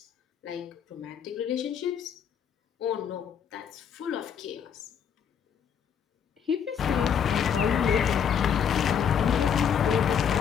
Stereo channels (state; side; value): quieter; right; 7.8 dB